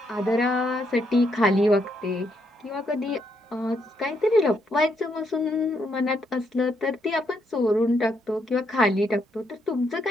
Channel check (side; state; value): both; normal; correlation 0.76